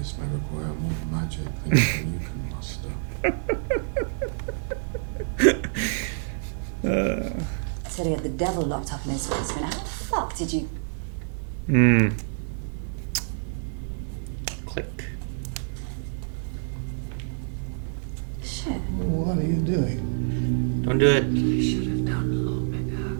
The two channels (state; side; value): silent; left; digital silence